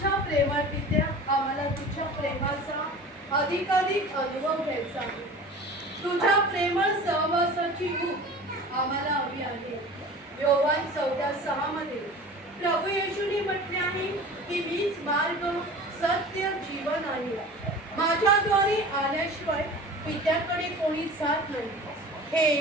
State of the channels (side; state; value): both; normal; correlation 0.38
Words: प्रेमळ पित्या, आम्हाला तुझ्या प्रेमाचा अधिकाधिक अनुभव घ्यायचा आहे. तुझ्या प्रेमळ सहवासाची ऊब आम्हाला हवी आहे. योहान 14:6 मध्ये प्रभू येशूने म्हटले आहे की मीच मार्ग, सत्य, जीवन आहे. माझ्याद्वारे आल्याशिवाय पित्याकडे कोणी जात नाही. हे